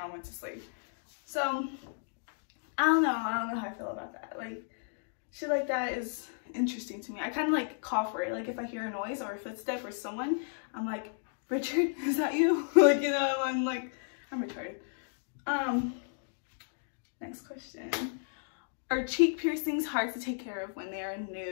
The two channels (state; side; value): silent; right; digital silence